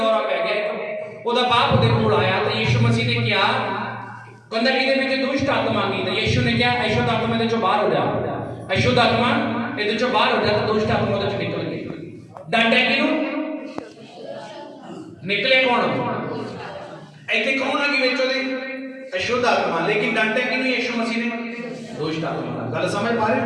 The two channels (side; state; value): both; identical; correlation 1.00